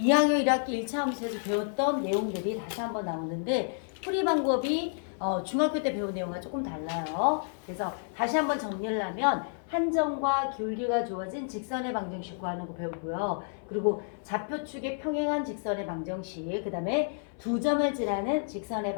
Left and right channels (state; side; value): silent; right; 58 dB below the other